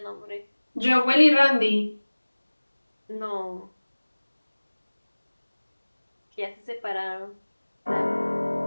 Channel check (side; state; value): both; inverted; correlation -1.00